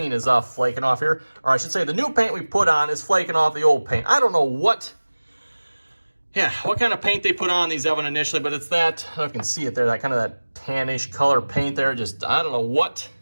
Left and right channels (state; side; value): inverted; both; correlation -1.00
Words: is flaking off here. Or I should say the new paint we put on is flaking off the old paint. I don't know what kind of paint they put on these, Evan, initially, but it's that, I don't know if you can see it there, that kind of that tannish color paint there. Just, I don't know what,